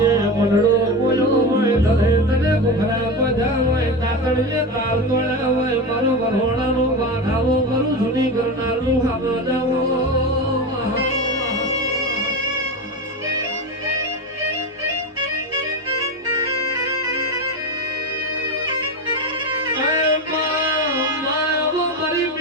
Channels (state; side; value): normal; both; correlation 0.21